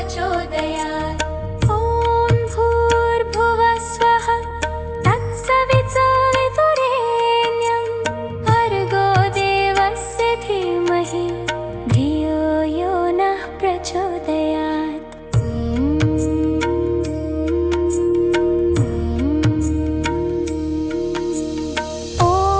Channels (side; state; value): both; identical; correlation 1.00